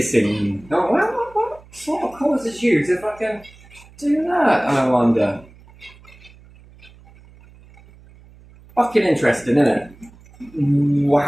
Oh, what sort of causes you if I can do that? I wonder. Fucking interesting, isn't it?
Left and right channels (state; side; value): noise; right; hum, 24 dB below the sound